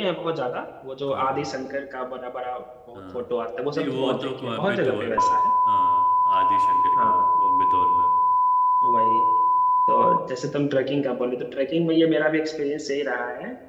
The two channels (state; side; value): identical; both; correlation 1.00